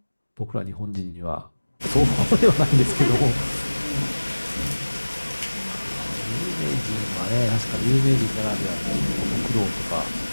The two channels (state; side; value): inverted; both; correlation -1.00